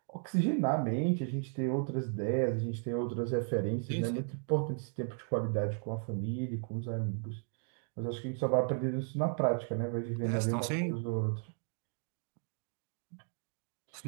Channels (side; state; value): left; silent; 54 dB below the other